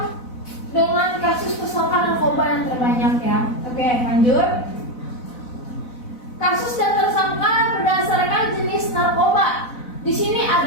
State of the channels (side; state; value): right; late; 4.0 ms